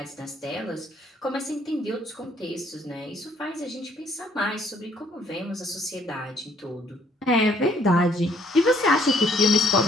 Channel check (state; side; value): normal; both; correlation 0.64